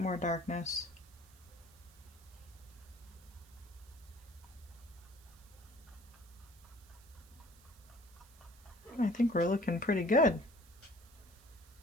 darkness. I think we're looking pretty good.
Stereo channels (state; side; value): noise; right; hiss, 25 dB below the sound